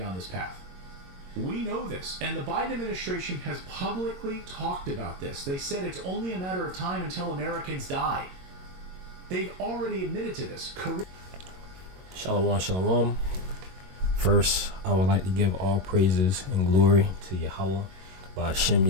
this path. We know this, and the Biden administration has publicly talked about this. They said it's only a matter of time until Americans die. They've already admitted to this. Shalom, shalom. First, I would like to give all praises and glory to Yahweh, Ba'ashem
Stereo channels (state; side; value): late; left; 22 ms